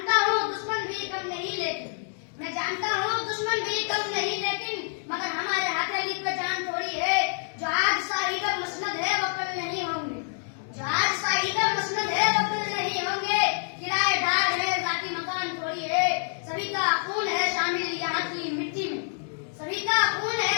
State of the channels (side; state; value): right; silent; 60 dB below the other